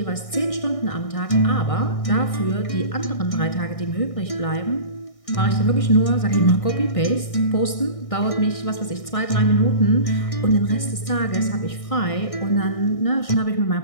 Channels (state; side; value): late; right; 1.6 ms